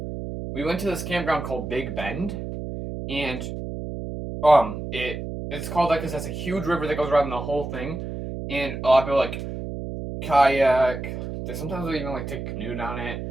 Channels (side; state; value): right; noise; hum, 6 dB below the sound